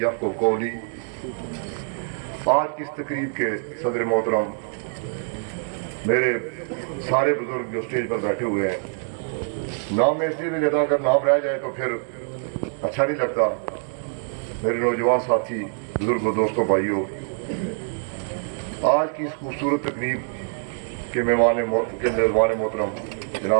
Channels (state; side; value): silent; left; digital silence